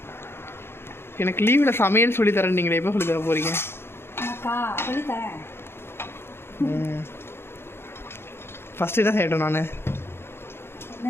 எனக்கு லீவில் சமையல் சொல்லி தரேன், நீங்களே எப்போ சொல்லி தர போகிறீங்க? அக்கா சொல்லித்தரேன். ஃபஸ்ட்டு என்ன செய்யட்டும்? நான் என்ன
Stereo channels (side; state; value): right; late; 0.11 ms